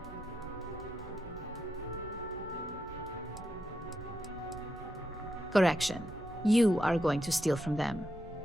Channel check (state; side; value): normal; both; correlation 0.84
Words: Correction. You are going to steal from them.